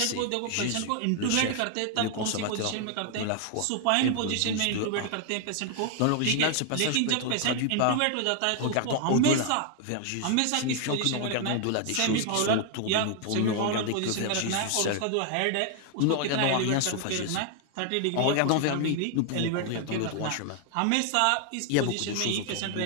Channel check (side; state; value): both; different; correlation 0.00